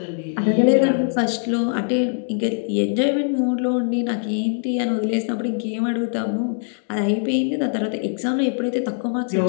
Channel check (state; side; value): silent; right; digital silence